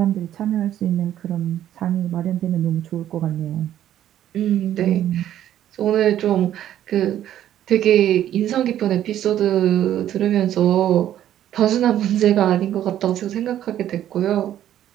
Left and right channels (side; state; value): left; quieter; 11.6 dB